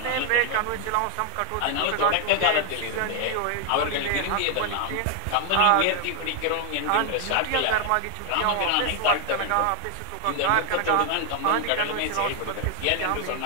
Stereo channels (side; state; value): both; different; correlation 0.00